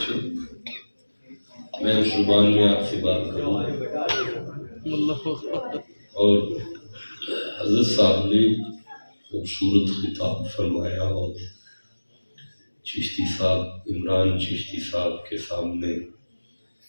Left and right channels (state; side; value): inverted; both; correlation -1.00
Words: میں اس زبان میں آپ سے بات کروں، اور حضرت صاحب نے خوبصورت خطاب فرمایا اور چشتی صاحب، عمران چشتی صاحب کے سامنے